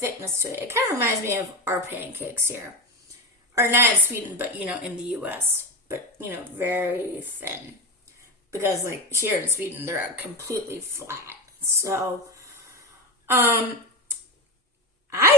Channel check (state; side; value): normal; both; correlation 0.21